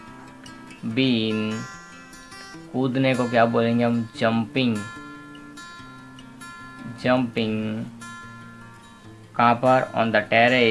बीन, कूदने को क्या बोलेंगे हम, जंपिंग। जंपिंग कहाँ पर, on the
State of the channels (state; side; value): identical; both; correlation 1.00